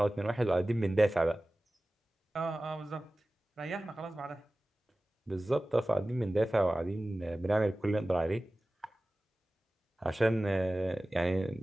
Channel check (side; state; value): both; normal; correlation 0.97